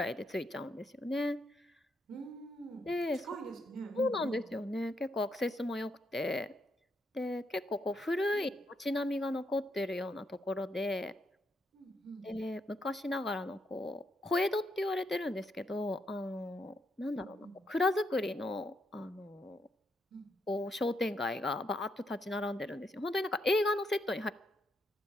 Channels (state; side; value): normal; both; correlation 0.78